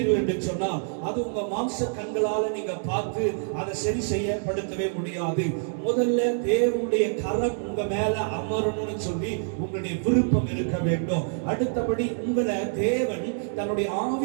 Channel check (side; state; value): left; silent; digital silence